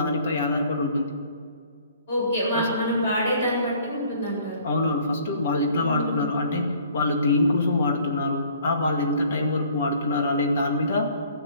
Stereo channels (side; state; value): both; inverted; correlation -0.56